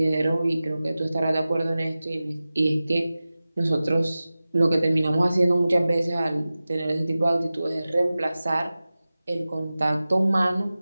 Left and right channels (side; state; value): both; inverted; correlation -0.96